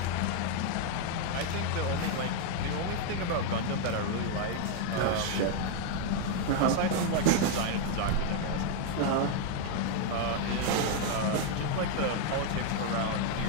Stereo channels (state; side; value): different; both; correlation 0.00